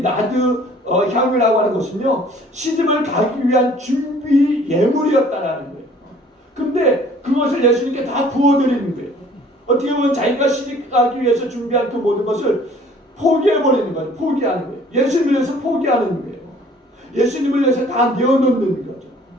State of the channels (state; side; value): normal; both; correlation 0.54